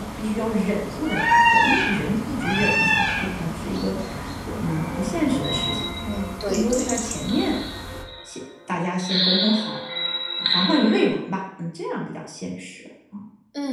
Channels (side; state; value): both; identical; correlation 1.00